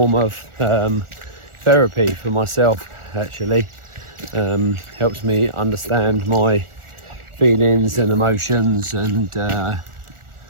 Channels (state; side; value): late; left; 1.4 ms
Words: of therapy for myself. Actually helps me understand my feelings and emotions, and